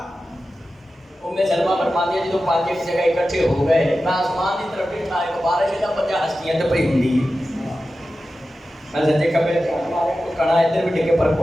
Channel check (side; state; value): both; normal; correlation 0.93